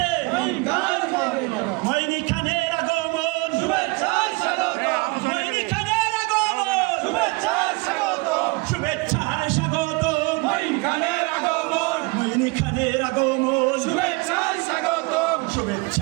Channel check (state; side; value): quieter; left; 26.7 dB